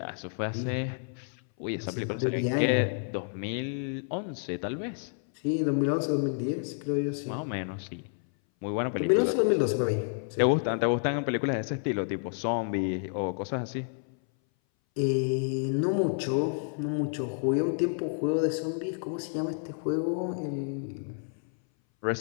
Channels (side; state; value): right; silent; 58 dB below the other